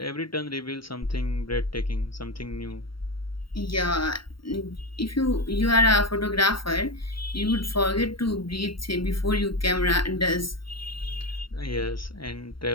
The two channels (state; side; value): late; right; 0.74 ms